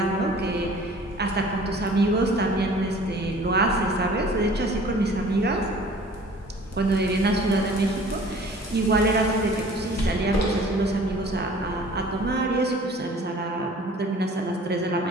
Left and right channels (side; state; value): both; normal; correlation 0.49